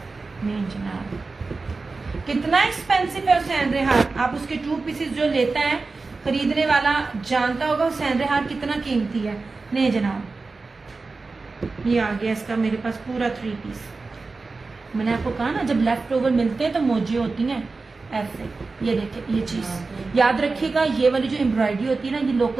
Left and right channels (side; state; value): left; quieter; 3.9 dB